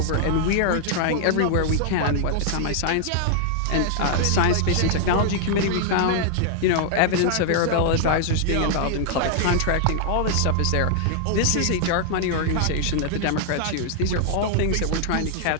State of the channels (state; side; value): different; both; correlation -0.01